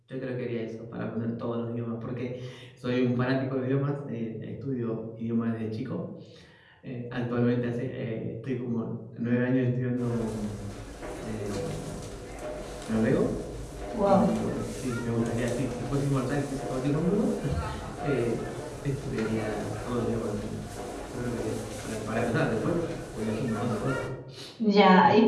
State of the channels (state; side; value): identical; both; correlation 1.00